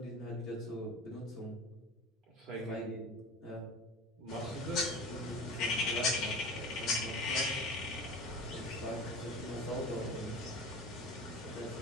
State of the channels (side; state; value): both; normal; correlation 0.34